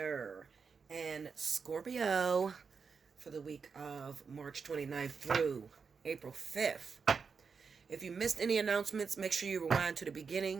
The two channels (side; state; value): left; quieter; 5.5 dB